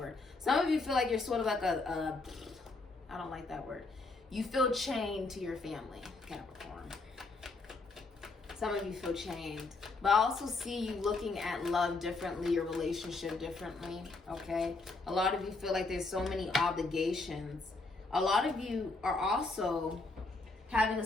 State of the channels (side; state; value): right; quieter; 3.6 dB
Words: Some of you feel like you're sort of like I don't like that word. You feel chained to your family, Capricorn. Some of you feel chained. But I also see you looking at love differently, your relationship differently, okay? A lot of you feel like there's so many obligations. A lot of you are also having a